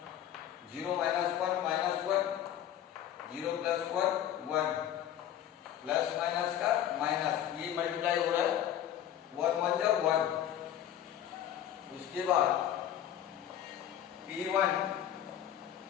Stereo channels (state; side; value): quieter; right; 10.9 dB